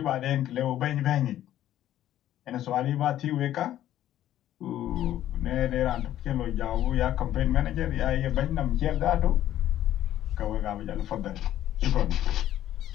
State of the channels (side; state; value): right; quieter; 12.5 dB